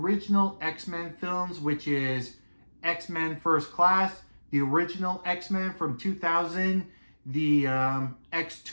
X-Men films, which is X-Men First Class, the original X-Men from 2000, the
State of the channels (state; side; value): inverted; both; correlation -1.00